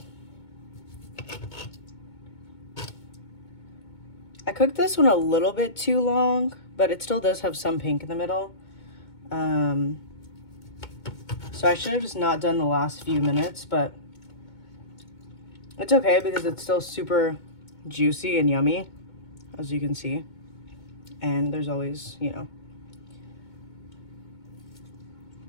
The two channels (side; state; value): right; late; 2.2 ms